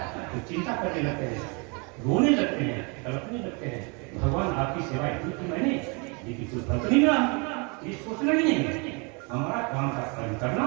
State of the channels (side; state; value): left; quieter; 32.6 dB